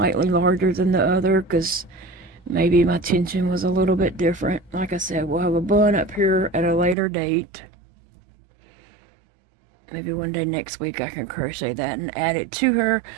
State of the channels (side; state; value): left; drops out; at 7.0 s